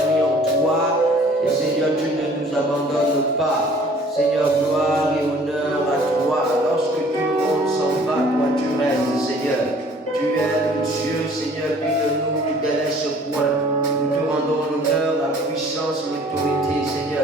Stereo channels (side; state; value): both; normal; correlation 0.54